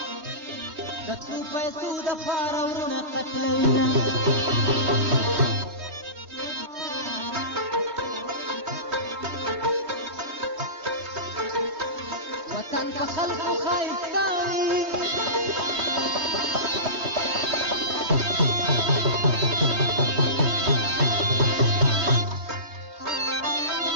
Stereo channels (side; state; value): left; late; 3.0 ms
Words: دتو پیسو دا فارورنا قتلینا وطن په خلکو ښایسته وي